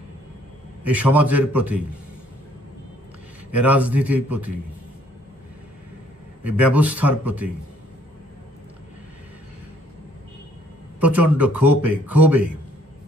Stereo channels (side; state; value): both; normal; correlation 0.63